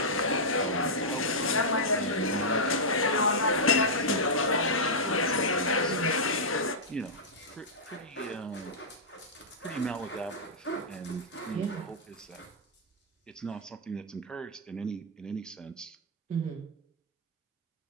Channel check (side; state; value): both; normal; correlation -0.10